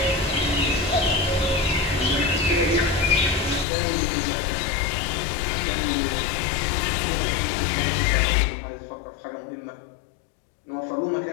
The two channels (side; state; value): right; drops out; at 3.7 s